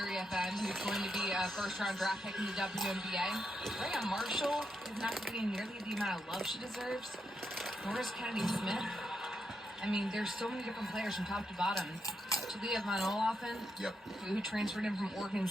who's going to be a first-round draft pick in the WNBA. Rhea Marshall is not getting nearly the amount of love she deserves. Norris Kennedy-Smith. I mean, there's so many different players from top to bottom. Talia Von Olaffen, who transferred in from Oregon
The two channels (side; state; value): both; normal; correlation 0.83